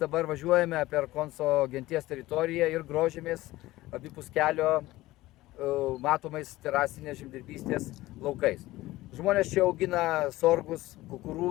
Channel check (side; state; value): right; quieter; 17.6 dB